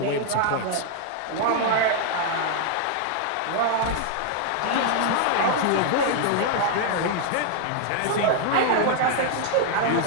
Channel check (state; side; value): different; both; correlation 0.00